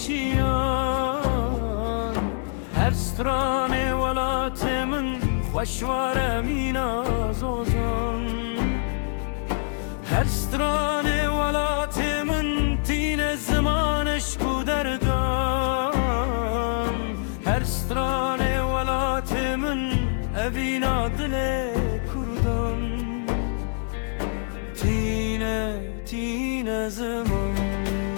هر ستران ولات من خوشوار مینا زوزان هر ستران ولات من تین زمانش کودردان هر ستران ولات من اوینا دل کردان تین زمان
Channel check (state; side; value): silent; right; digital silence